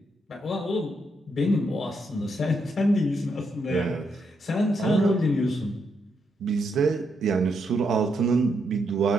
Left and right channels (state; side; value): normal; both; correlation 0.79